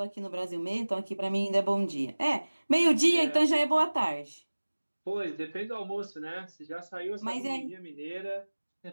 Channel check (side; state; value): both; inverted; correlation -1.00